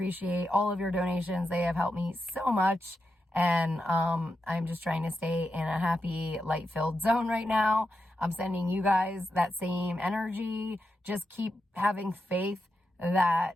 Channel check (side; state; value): both; normal; correlation 0.87